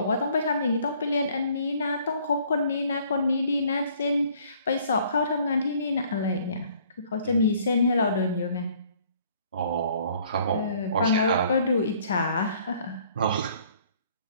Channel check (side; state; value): both; inverted; correlation -0.59